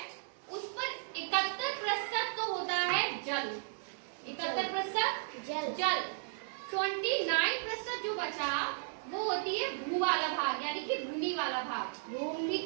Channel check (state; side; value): silent; left; 54 dB below the other